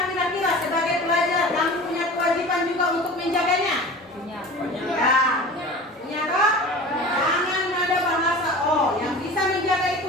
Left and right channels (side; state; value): both; normal; correlation 0.37